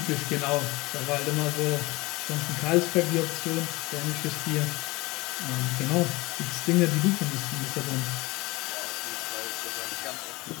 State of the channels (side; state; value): right; quieter; 22.6 dB